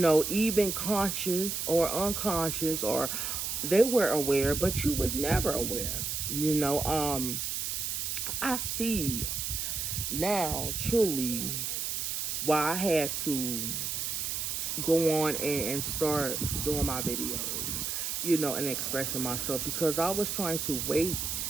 conscious or unconscious, or they were aware, but you was never aware. I see now truly why I had to go on and start doing my videos, and expressing myself, because I was trying to wait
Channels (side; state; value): right; noise; hiss, 2 dB below the sound